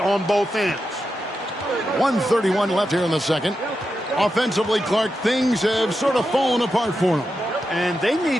both ends. 1:31 left here in the second. Offensively, Clark, things have sort of fallen apart for him. And they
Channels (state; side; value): normal; both; correlation 0.88